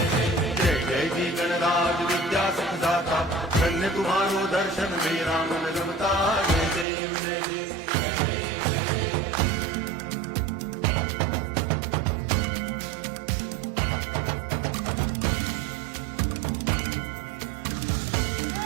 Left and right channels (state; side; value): drops out; left; at 6.9 s